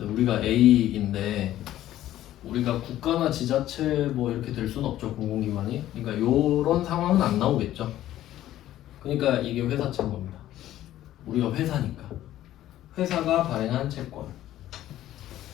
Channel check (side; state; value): right; quieter; 13.4 dB